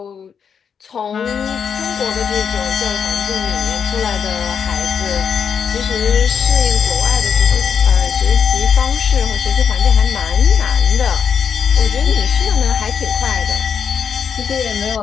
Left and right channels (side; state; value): right; quieter; 7.0 dB